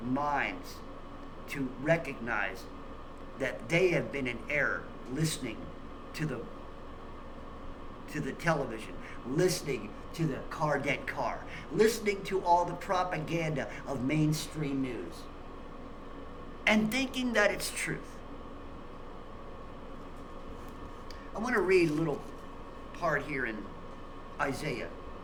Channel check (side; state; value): both; identical; correlation 1.00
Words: minds to recognize that they have been in error listening to the television, listening to the dead car, listening to all the propaganda of mainstream news, and thinking that it's truth. I want to read a little part here in Isaiah